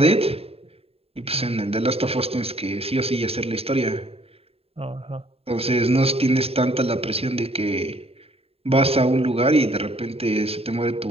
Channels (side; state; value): left; late; 0.29 ms